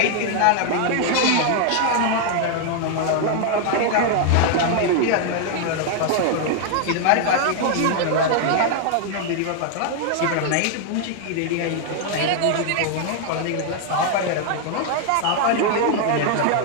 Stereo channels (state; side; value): different; both; correlation 0.00